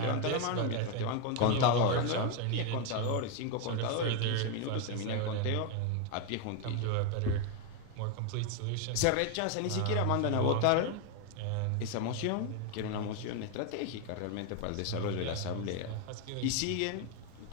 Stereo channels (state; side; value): different; both; correlation 0.01